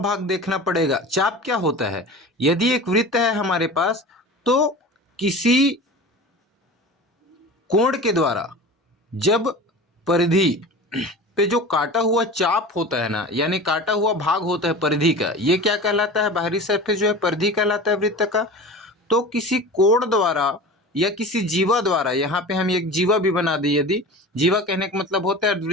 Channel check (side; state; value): both; normal; correlation 0.35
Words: देखना पड़ेगा, चाप क्या होता है। यदि एक वृत्त है हमारे पास, तो किसी कोण के द्वारा जब परिधि पे जो काटा हुआ चाप होता है ना, यानी काटा हुआ भाग होता है परिधि का, ये क्या कहलाता है, बाहरी सरफेस जो है परिधि कहलाता है वृत्त का। तो किसी कोण द्वारा या किसी जीवा द्वारा, यहाँ पे हम एक जीवा भी बना दें, यदि जीवा कहने का मतलब होता है